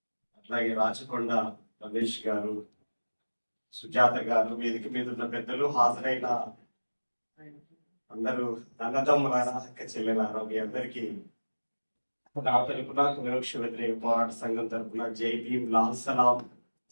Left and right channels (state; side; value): inverted; both; correlation -1.00